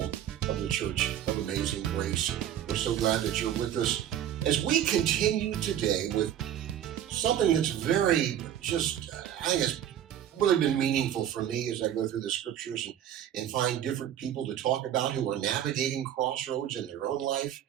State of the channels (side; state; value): left; quieter; 10.5 dB